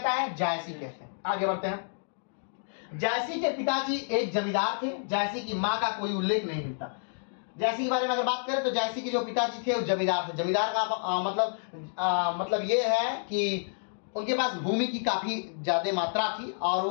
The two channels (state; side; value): silent; right; digital silence